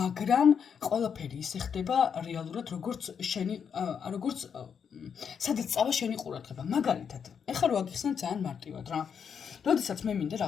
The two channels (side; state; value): right; quieter; 7.1 dB